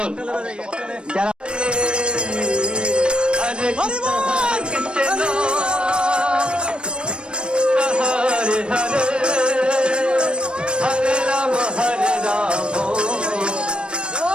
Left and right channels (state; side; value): late; left; 0.055 ms